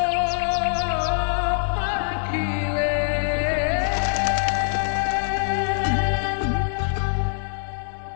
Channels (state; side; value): silent; right; digital silence